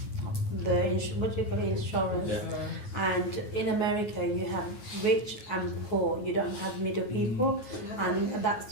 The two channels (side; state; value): right; late; 9.4 ms